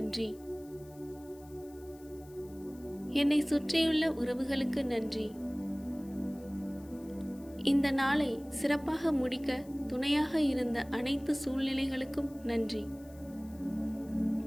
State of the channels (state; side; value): noise; left; hiss, 25 dB below the sound